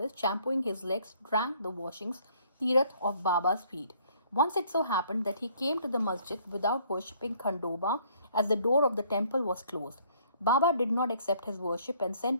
shampooing his legs, drank the washings, tirath of Baba's feet. Once it so happened that he came to the masjid without worshipping Khandoba, as the door of the temple was closed. Baba did not accept his worship and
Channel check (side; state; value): both; inverted; correlation -0.62